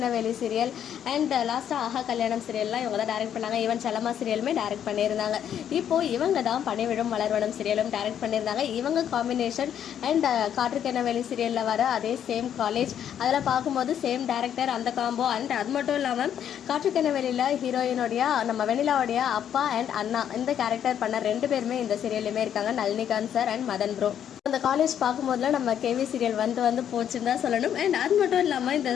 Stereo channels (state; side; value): quieter; right; 9.5 dB